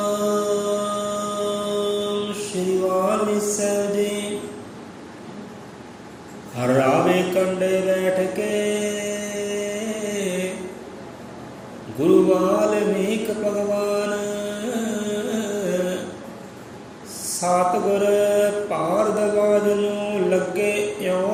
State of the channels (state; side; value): identical; both; correlation 1.00